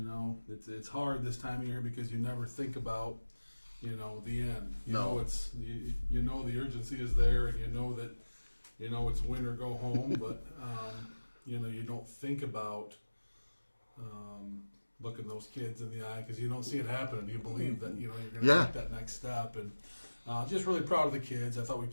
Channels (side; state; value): both; inverted; correlation -1.00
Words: hard this time of year because you never think about, the end. It's the urgency is there, and that, it's win or go home. But you don't think about looking those kids in the eye because you don't see it happening. You believe that you're going to take that next step, and just really proud of the kids. I thought we